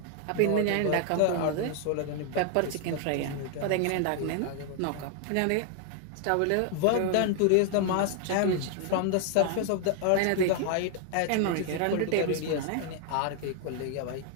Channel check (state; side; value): different; both; correlation 0.00